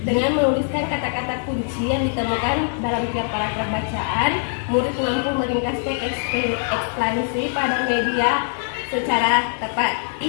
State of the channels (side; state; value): right; silent; 56 dB below the other